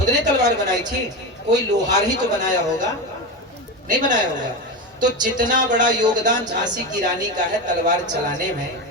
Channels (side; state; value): both; normal; correlation 0.19